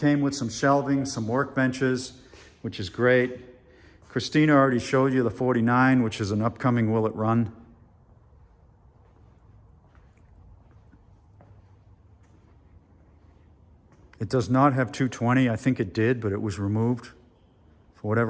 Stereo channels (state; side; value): identical; both; correlation 1.00